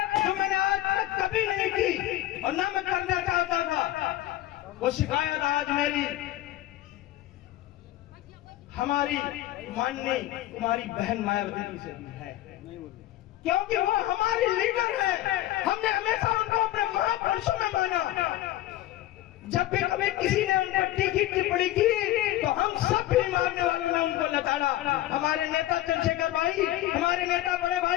जो मैंने आज तक कभी नहीं की और ना मैं करना चाहता था, वो शिकायत आज मेरी हमारी माननीय कुमारी बहन मायावती जी से भी है, क्योंकि वो हमारी लीडर है। हमने हमेशा उनको अपने महापुरुषों में माना। जब भी कभी किसी ने उन पर तीखी टिप्पणी की तो हम सब भी मारने वालों ने उनको लताड़ा। हमारे नेता चंद्रशेखर भाई, हमारे नेता बड़े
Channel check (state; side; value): quieter; right; 14.8 dB